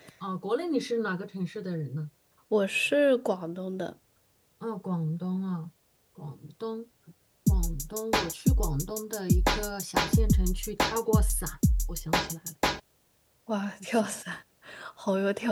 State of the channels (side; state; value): both; identical; correlation 1.00